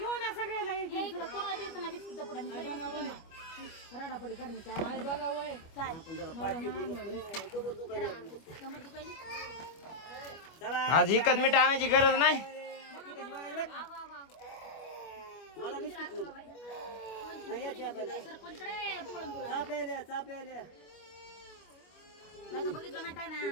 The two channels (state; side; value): late; right; 25 ms